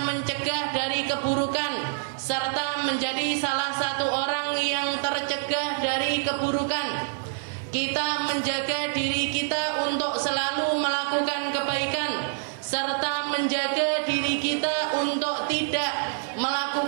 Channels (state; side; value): silent; left; 61 dB below the other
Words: mencegah dari keburukan, serta menjadi salah satu orang yang tercegah dari keburukan. Kita menjaga diri kita untuk selalu melakukan kebaikan, serta menjaga diri kita untuk tidak